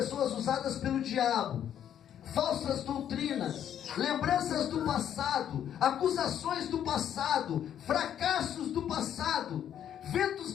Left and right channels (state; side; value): quieter; right; 9.9 dB